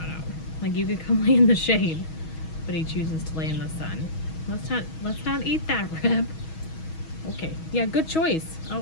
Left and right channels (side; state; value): right; late; 6.3 ms